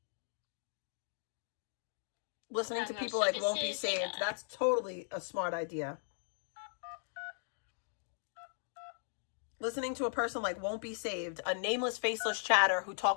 Listening to people like won't be saved. That's totally a smart idea. Listening to a person like won't be saved. A nameless, faceless chatter who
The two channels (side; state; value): right; silent; digital silence